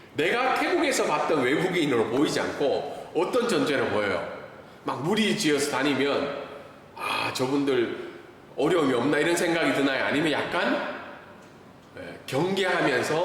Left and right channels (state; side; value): identical; both; correlation 1.00